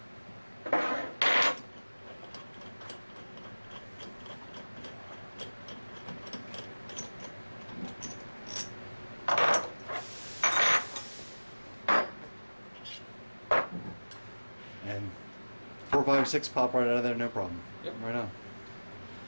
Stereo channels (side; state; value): both; inverted; correlation -1.00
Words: And 4, 5, 6 pop right out of there, no problem. Yep. Right on.